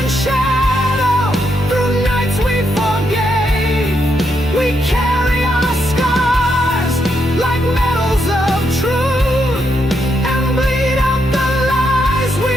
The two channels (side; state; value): both; normal; correlation 0.79